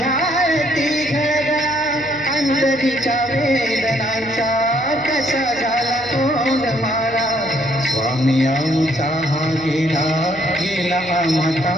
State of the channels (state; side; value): noise; right; hum, 21 dB below the sound